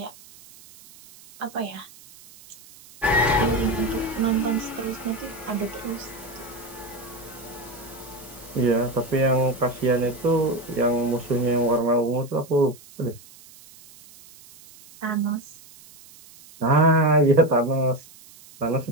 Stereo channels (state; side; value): noise; right; hiss, 22 dB below the sound